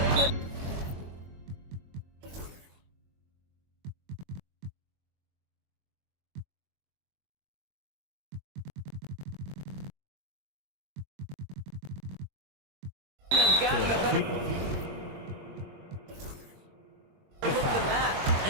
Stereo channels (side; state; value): left; late; 22 ms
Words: could. Have gotten a better look than that.